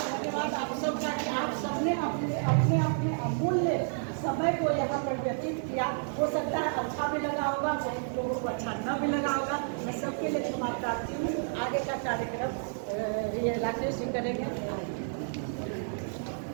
धन्यवाद आप सबका कि आप सबने अपने अपने अमूल्य समय को यहाँ पर व्यतीत किया। हो सकता है अच्छा भी लगा होगा, बहुत लोगों को अच्छा न भी लगा होगा, मैं सबके लिए क्षमा प्रार्थी हूँ। आगे का कार्यक्रम ये राकेश जी करेंगे।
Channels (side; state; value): left; silent; digital silence